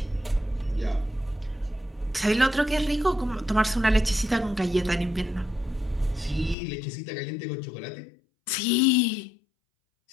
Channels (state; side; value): drops out; right; at 6.6 s